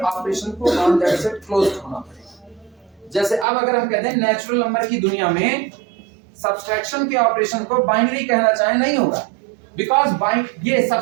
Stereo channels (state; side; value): drops out; left; at 3.5 s